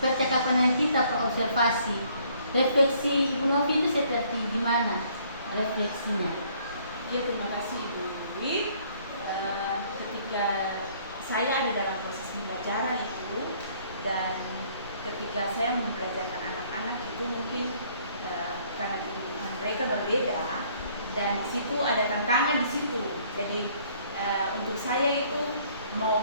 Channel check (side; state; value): both; inverted; correlation -0.62